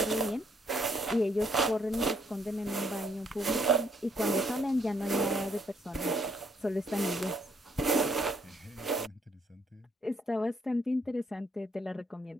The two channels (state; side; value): normal; both; correlation 0.69